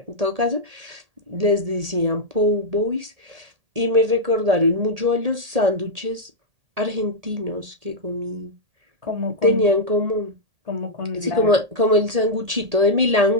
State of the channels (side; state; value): left; late; 1.8 ms